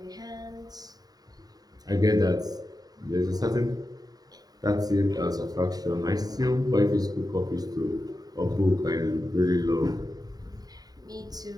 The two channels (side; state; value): left; late; 0.18 ms